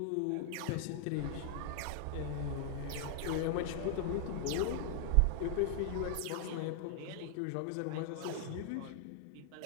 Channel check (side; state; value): both; different; correlation -0.01